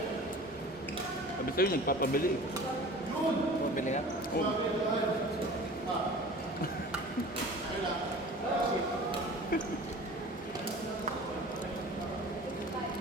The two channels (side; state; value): both; normal; correlation 0.41